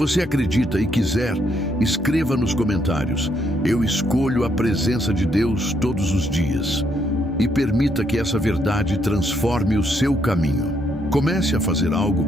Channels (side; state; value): both; normal; correlation 0.74